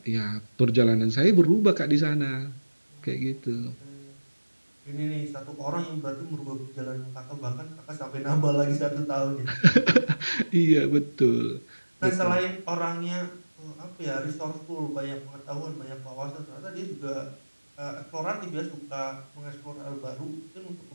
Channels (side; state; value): both; inverted; correlation -1.00